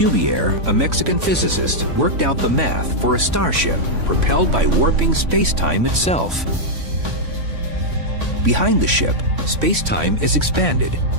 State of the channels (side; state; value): left; late; 3.5 ms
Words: a Mexican physicist, worked out the math for a starship propelled by warping space-time itself. Behind the ship, space-time is expanded.